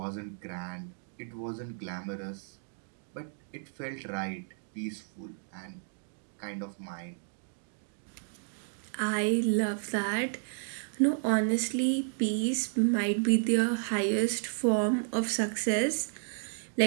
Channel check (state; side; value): silent; left; digital silence